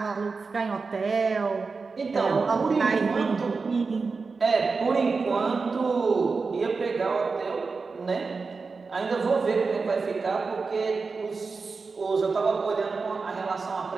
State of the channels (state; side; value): quieter; left; 4.5 dB